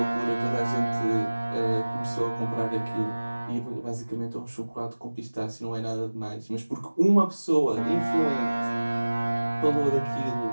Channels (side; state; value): both; inverted; correlation -1.00